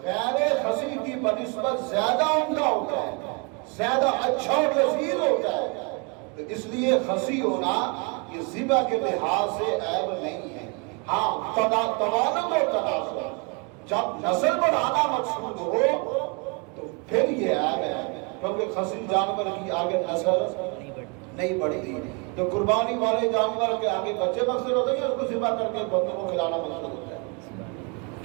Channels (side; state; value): left; quieter; 32.4 dB